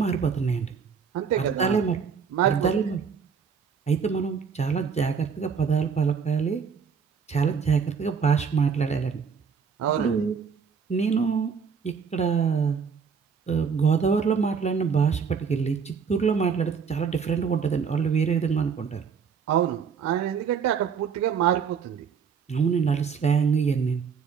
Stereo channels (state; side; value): quieter; left; 6.2 dB